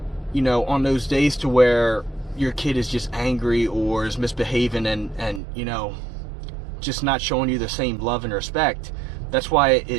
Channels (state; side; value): drops out; left; at 5.4 s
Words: you know, on those days to where your kid is just angry or is misbehaving and you know, just not showing you the same love and respect, that's why